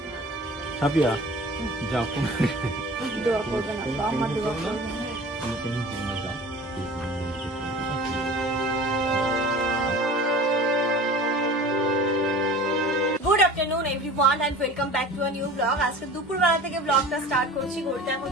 সাপিয়া যাও, good afternoon everyone and welcome back to a new blog. আজকে দুপুরবেলা থেকে ব্লগটা স্টার্ট করছি। ঘড়িতে এখন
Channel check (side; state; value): both; normal; correlation 0.40